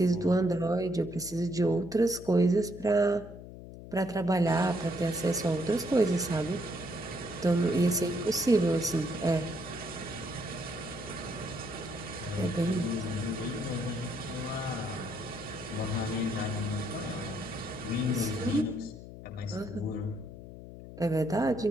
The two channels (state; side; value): noise; left; hum, 14 dB below the sound